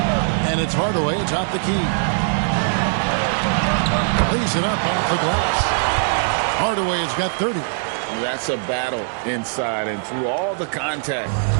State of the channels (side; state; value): left; silent; digital silence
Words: And it's Hardaway atop the key. Lays it up off the glass. Hardaway has got 30. That's a battle inside, and through all the contact,